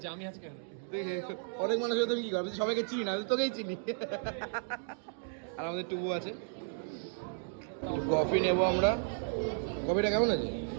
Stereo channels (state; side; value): silent; left; digital silence